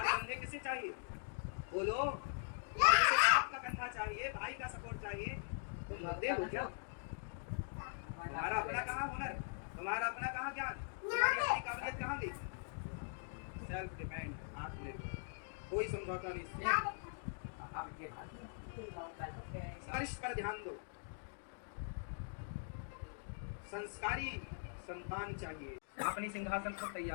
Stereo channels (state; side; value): silent; right; digital silence